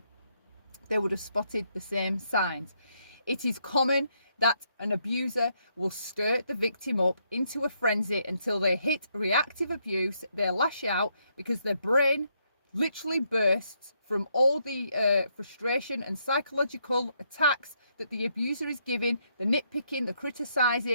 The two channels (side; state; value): both; inverted; correlation -0.75